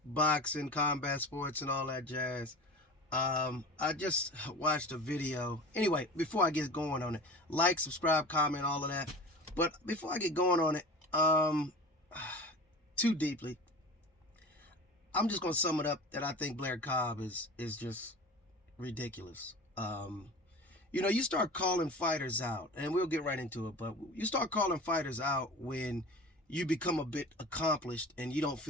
boxing, combat sports, and all that jazz. I just watched a video. Anyway, before I get going on it, like, subscribe, comment, all of that. But before I get going on it, too deeply, I'm just gonna sum it up that I think Blair Cobbs is just ridiculous. You start calling fighters out, and we'll get right into it. But you start calling fighters out when you become a bit accomplished and you don't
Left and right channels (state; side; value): normal; both; correlation 0.35